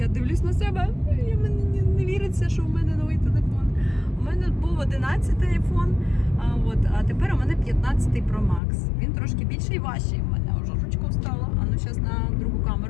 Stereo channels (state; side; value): drops out; right; at 8.6 s